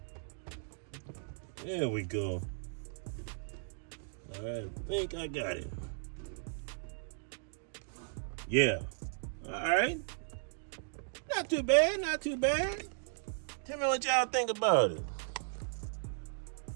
There we go. I think I got it. Yeah. All right. Not too bad, not too bad. Tell me what y'all think about it.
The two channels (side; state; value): left; silent; digital silence